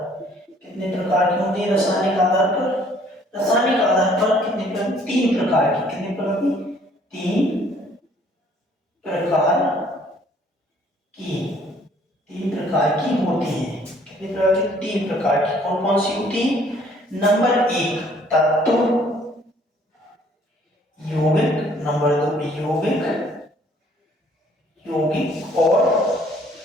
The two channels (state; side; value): normal; both; correlation 0.60